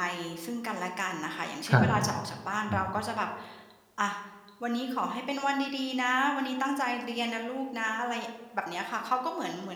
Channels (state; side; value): identical; both; correlation 1.00